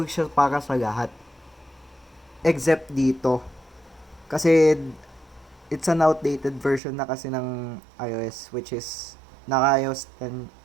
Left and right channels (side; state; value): left; drops out; at 6.8 s